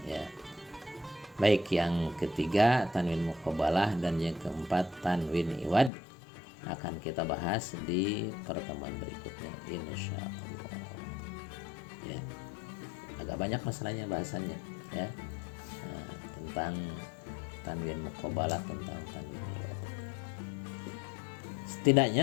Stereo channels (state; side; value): drops out; right; at 5.9 s